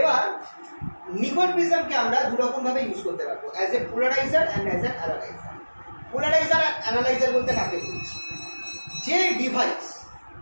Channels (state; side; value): inverted; both; correlation -1.00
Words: নিকল প্রিজমকে আমরা দু রকম ভাবে ইউজ করতে পারবো, as a polariser and as an analyser. Polariser আর অ্যানালাইজার বলতে কাকে বলছি, যে ডিভাইস,